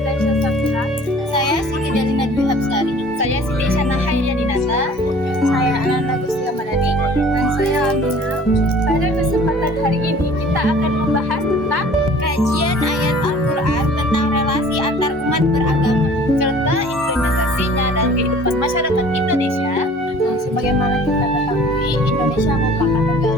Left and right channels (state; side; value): normal; both; correlation 0.49